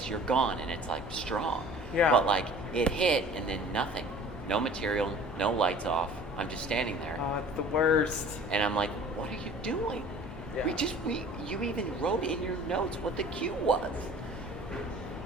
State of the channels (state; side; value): normal; both; correlation 0.46